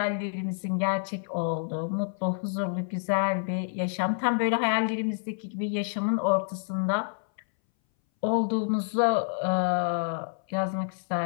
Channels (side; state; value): right; silent; 59 dB below the other